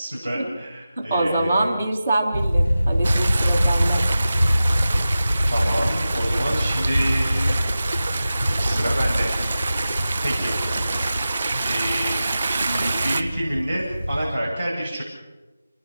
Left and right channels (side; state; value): both; inverted; correlation -0.94